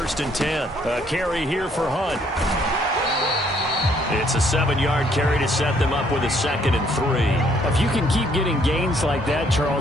and 10. A carry here for Hunt. It's a 7-yard carry to set them up with a 2nd and 3. If you can keep getting gains like that,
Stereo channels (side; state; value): both; normal; correlation 0.66